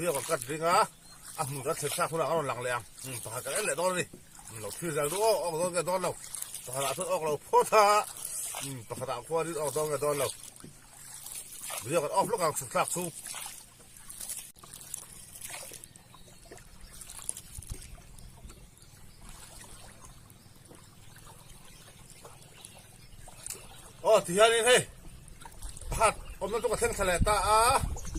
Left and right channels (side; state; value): both; identical; correlation 1.00